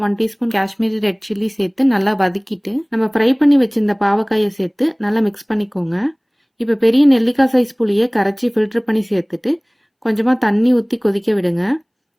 1 teaspoon Kashmiri red chilli சேர்த்து நல்லா வதக்கிட்டு நம்ம ஃப்ரை பண்ணி வச்சிருந்த பாவக்காயை சேர்த்து நல்லா மிக்ஸ் பண்ணிக்கோங்க. இப்போ பெரிய நெல்லிக்காய் சைஸ் புளியை கரைச்சி ஃபில்டர் பண்ணி சேர்த்துட்டு கொஞ்சமாக தண்ணி ஊற்றி கொதிக்க விடுங்க.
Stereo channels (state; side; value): identical; both; correlation 1.00